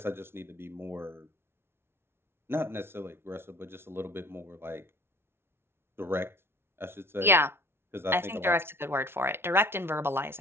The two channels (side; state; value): left; late; 0.12 ms